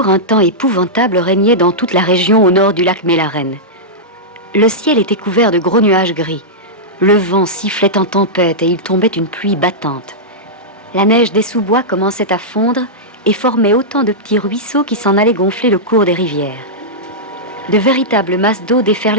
un temps épouvantable régnait dans toute la région au nord du lac Mélaren. Le ciel était couvert de gros nuages gris. Le vent sifflait en tempête et il tombait une pluie battante. La neige des sous-bois commençait à fondre et formait autant de petits ruisseaux qui s'en allaient gonfler le cours des rivières. De véritables masses d'eau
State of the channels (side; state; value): both; normal; correlation -0.11